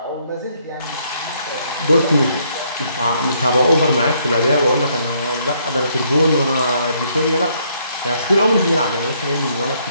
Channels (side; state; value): both; inverted; correlation -0.70